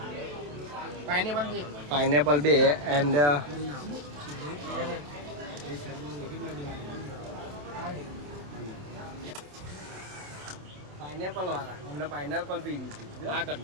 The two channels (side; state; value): left; late; 27 ms